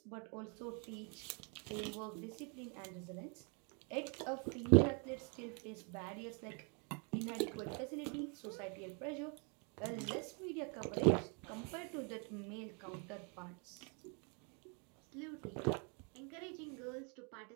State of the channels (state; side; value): quieter; left; 36.0 dB